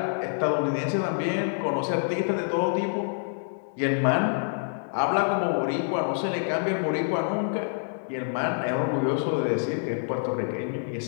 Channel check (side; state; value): right; silent; digital silence